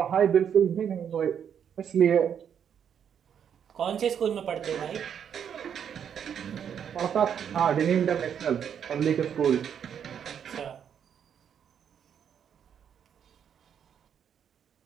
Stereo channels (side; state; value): left; quieter; 8.3 dB